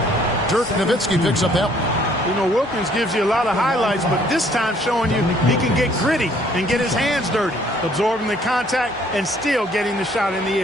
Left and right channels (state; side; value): normal; both; correlation 0.61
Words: Dirk Nowitzki picks up that one. You know, Wilkins gives you a lot of highlights, but this time showing you he can get gritty and get his hands dirty, absorbing the contact and still getting the shot in the